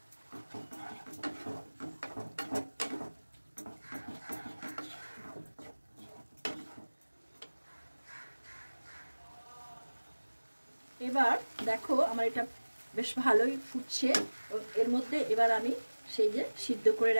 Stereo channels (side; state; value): both; inverted; correlation -1.00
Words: এবার দেখো আমার এটা বেশ ভালোই ফুটছে। এর মধ্যে এবার আমি সেই যে সিদ্ধ করে